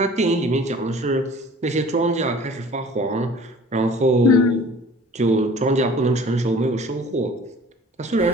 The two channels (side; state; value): both; normal; correlation 0.47